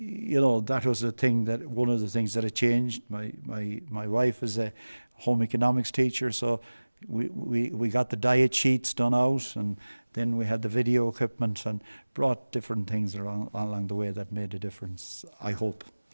was one of the things that had changed. My wife is a home economics teacher, so we got the diet sheets done out, and then we had the video equipment and brought different things along the way that made a difference, I hope.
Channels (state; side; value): inverted; both; correlation -1.00